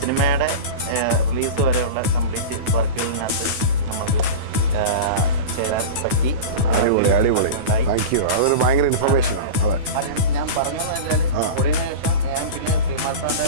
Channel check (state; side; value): late; left; 9.2 ms